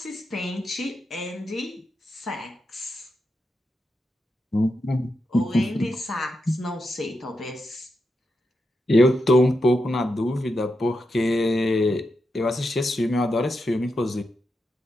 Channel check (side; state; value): both; normal; correlation 0.86